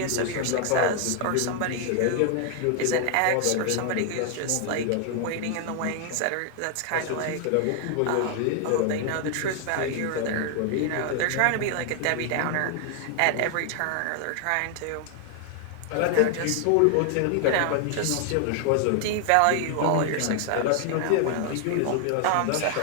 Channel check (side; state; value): both; different; correlation 0.00